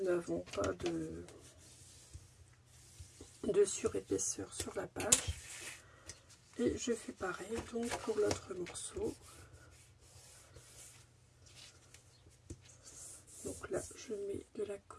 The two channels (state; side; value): identical; both; correlation 1.00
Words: n'avons pas de surépaisseur sur la page. Et je fais pareil donc pour l'autre morceau. Donc là, je mets de la